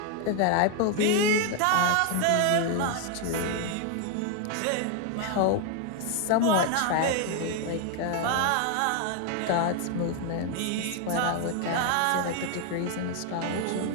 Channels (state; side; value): different; both; correlation 0.01